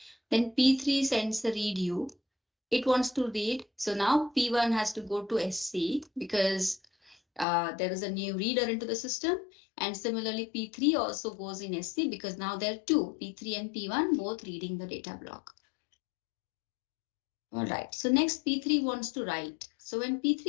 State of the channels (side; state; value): right; drops out; at 7.5 s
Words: Then P3 sends the read U. It wants to read. So now P1 has to go to SC because there is a new reader into the system. And similarly, P3 also goes in SC because now there are two, P3 and P1, both reading the data block. All right, so next P3 wants to write. So when